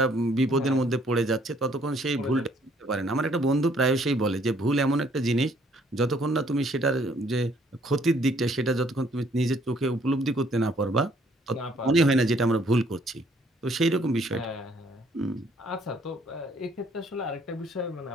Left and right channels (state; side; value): normal; both; correlation 0.63